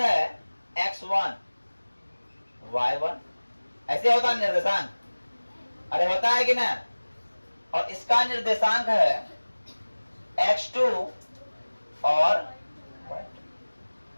x1 y1, ऐसे होता है निर्देशांक। अरे होता है कि ना? और इसका निर्देशांक है x2 और y2।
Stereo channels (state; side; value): inverted; both; correlation -1.00